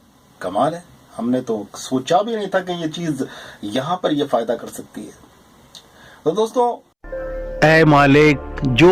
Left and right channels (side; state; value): both; identical; correlation 1.00